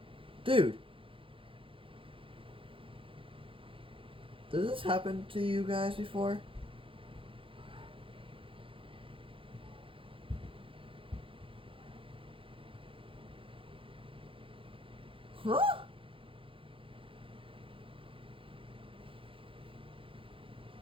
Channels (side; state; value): left; late; 0.26 ms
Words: Dude. Does this happen to you guys before? Huh?